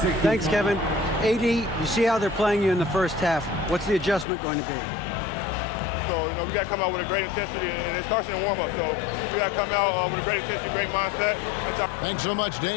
Thanks, Kevin. AD, you see how they're playing you in the first half. What's the adjustment going to be? So, we got to come out with a great intensity, and it starts in the warm-up. So we got to come out with a great intensity, great mindset. Thanks so much,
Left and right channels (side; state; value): right; drops out; at 4.2 s